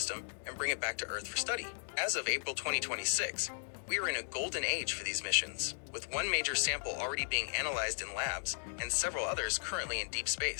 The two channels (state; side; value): silent; right; digital silence